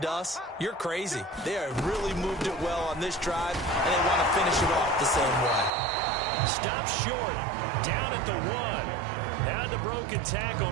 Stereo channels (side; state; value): left; drops out; at 5.7 s